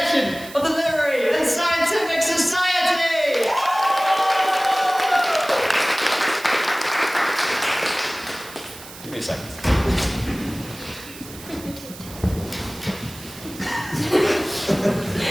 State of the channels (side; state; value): right; noise; hiss, 16 dB below the sound